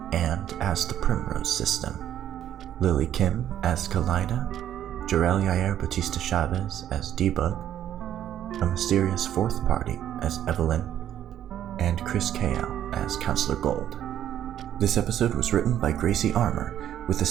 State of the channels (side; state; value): left; quieter; 10.9 dB